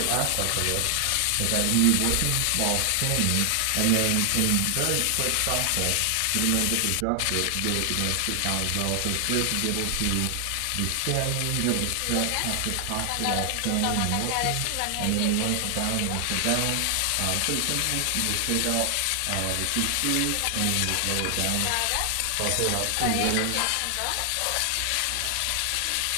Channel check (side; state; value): both; different; correlation 0.00